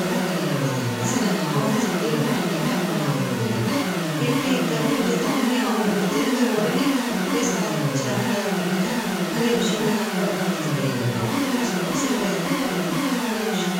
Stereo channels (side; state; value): both; identical; correlation 1.00